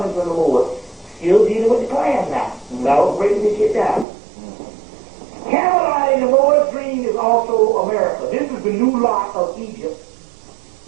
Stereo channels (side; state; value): left; drops out; at 4.0 s